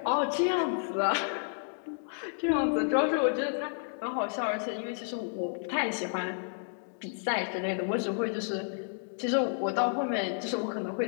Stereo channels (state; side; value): silent; right; digital silence